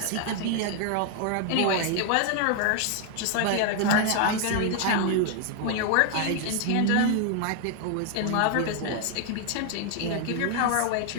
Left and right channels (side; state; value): both; different; correlation 0.00